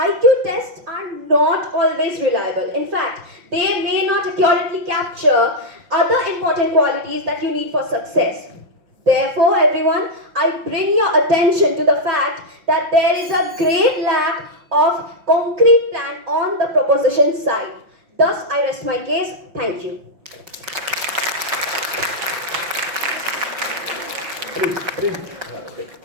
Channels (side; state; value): left; late; 5.8 ms